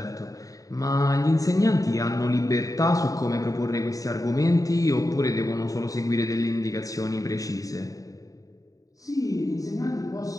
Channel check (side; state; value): right; late; 0.17 ms